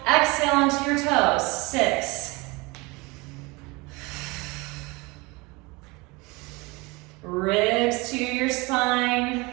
Exhale onto your toes. 6. Ribs to your spine.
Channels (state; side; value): quieter; left; 24.9 dB